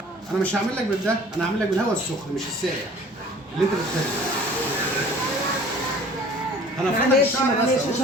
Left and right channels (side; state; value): both; normal; correlation 0.49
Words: انا مش هعمل لك بالده. انا هعمل لك بالهواء السخن مش الساقع اللي انت بتحبه. انا فاتك معلش الشعر بس معلش أهو.